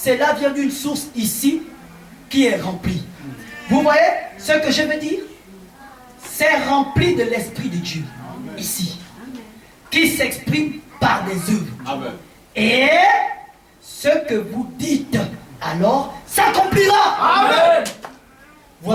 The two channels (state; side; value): identical; both; correlation 1.00